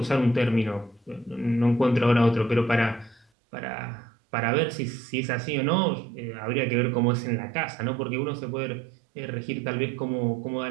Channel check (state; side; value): drops out; left; at 3.2 s